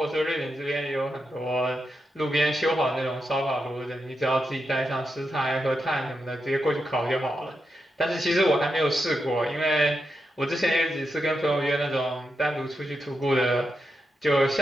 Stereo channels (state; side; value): normal; both; correlation 0.86